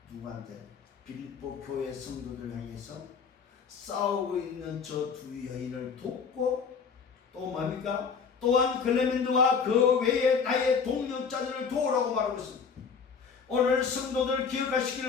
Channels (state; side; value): quieter; right; 5.9 dB